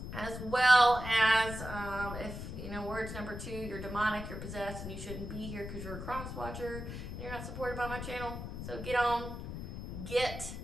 As well as if, words number 2, you're demonic, you're possessed, and you shouldn't be here because you're a cross watcher and you're not supported by my channel. So get.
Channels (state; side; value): noise; left; rumble, 7 dB below the sound